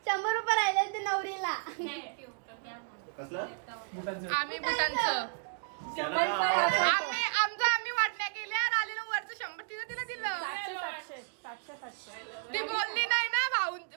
100 रुपये राहिले आणि ते नवरीला. आम्ही बुटांचं आम्ही वाटण्या केल्या. आलेलं वरचं 100 तिला दिलं. ती बोलली नाही ना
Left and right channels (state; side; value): silent; left; digital silence